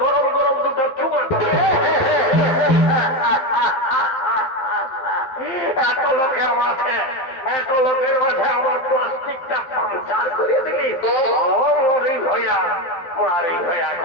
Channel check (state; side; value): late; right; 12 ms